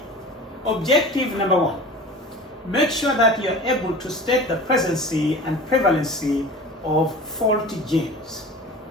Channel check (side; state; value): both; normal; correlation 0.38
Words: Objective number 1, make sure that you're able to state the presence and prevalency of faulty genes.